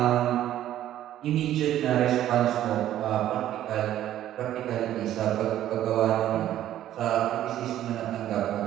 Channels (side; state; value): left; quieter; 12.3 dB